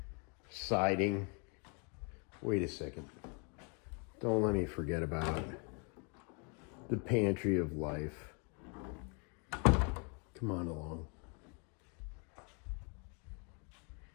siding. Wait a second. Don't let me forget about the pantry of life. Come on along.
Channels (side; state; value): right; quieter; 36.1 dB